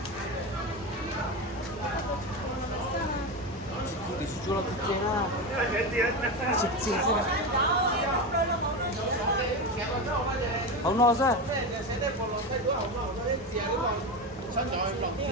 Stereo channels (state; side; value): normal; both; correlation 0.19